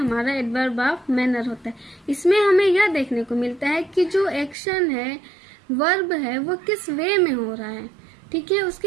एडवर्ब ऑफ मैनर होता है। इसमें हमें यह देखने को मिलता है कि जो एक्शन है, वर्ब है, वो किस वे में हो रहा है। ठीक है,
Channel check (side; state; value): left; drops out; at 4.5 s